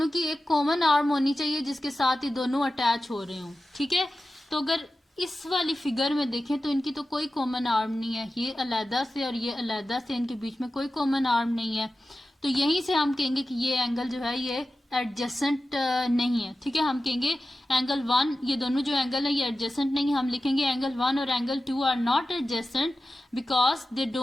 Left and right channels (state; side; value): normal; both; correlation 0.94